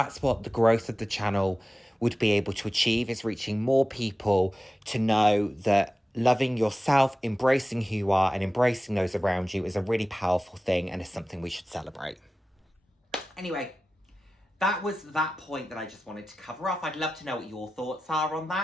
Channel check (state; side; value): normal; both; correlation 0.95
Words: what the growth of the channel would be able to achieve, is reaching more people to know that loving yourself, embracing who you are, and embracing those around you is a really powerful thing and is something we should celebrate. Anyway, that was that point that I just wanted to cover off. I'd love to know what your thoughts are on